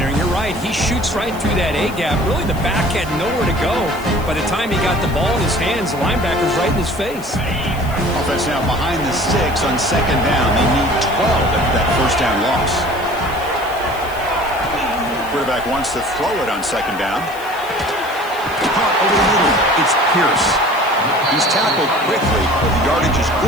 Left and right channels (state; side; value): noise; left; hiss, 19 dB below the sound